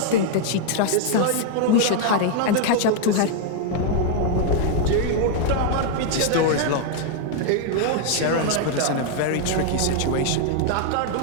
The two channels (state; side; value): different; both; correlation 0.00